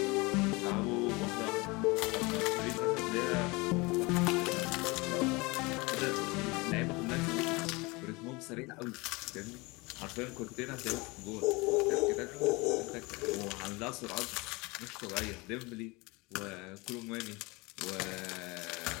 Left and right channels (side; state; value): right; quieter; 25.2 dB